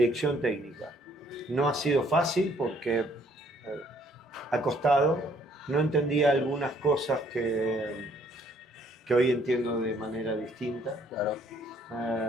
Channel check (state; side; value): normal; both; correlation 0.64